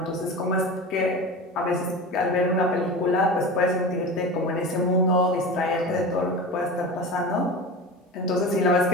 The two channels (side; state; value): both; normal; correlation 0.30